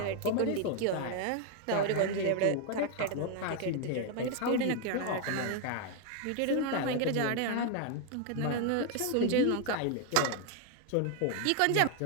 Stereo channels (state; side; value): different; both; correlation 0.00